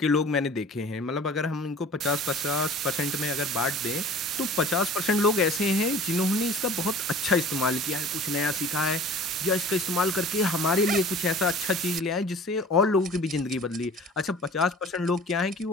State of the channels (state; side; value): normal; both; correlation 0.45